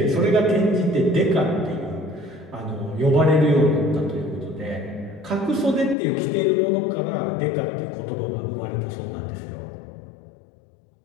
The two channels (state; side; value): drops out; right; at 6.0 s